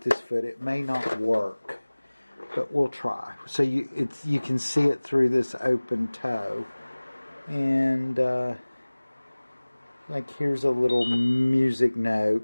this foot. It may not work, but we'll try. So you can see it through this open toe. And like here's a little music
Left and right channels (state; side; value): inverted; both; correlation -1.00